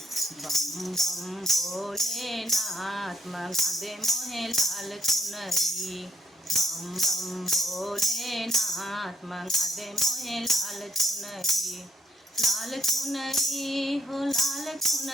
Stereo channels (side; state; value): both; normal; correlation 0.72